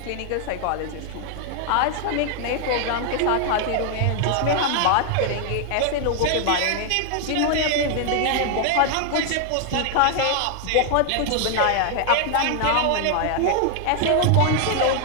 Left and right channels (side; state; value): both; different; correlation 0.00